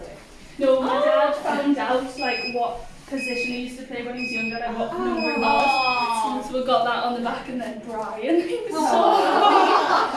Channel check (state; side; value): identical; both; correlation 1.00